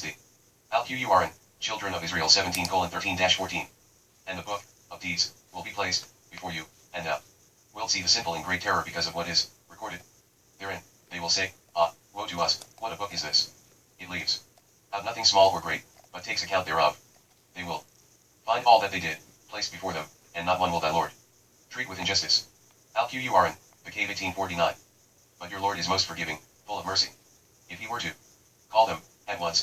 thee. Alqurn, Children of Israel 17:13-14. And the book of deeds will be placed before you, and thou wilt see the simple in great terror because of what is recorded therein. They will say, ah, woe to us, what a book is this? It leaves out nothing small or great, but takes account thereof. They will find all that they did placed before them, and not one will thy Lord treat with injustice. Alqurn, the Cave 18:49. But your Lord is most forgiving, full of mercy. If he were to call them at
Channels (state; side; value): identical; both; correlation 1.00